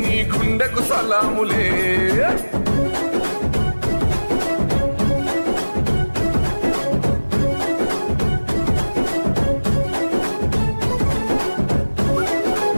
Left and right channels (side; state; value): both; inverted; correlation -1.00